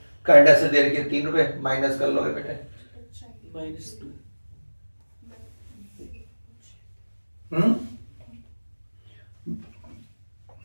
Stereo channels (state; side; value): inverted; both; correlation -1.00